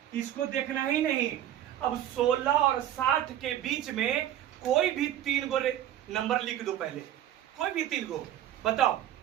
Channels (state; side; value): quieter; left; 11.7 dB